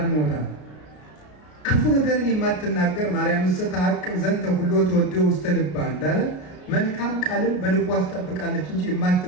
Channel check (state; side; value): late; right; 33 ms